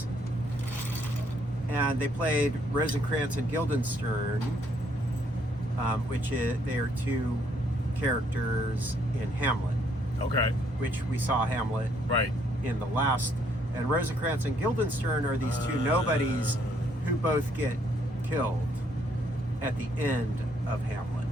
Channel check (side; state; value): both; normal; correlation 0.68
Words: And they played Rosencrantz and Guildenstern, they are two characters in Hamlet. Okay. Which we saw Hamlet Right. in the last. And Rosencrantz and Guildenstern are these two nobodies who both get killed at the end of Hamlet.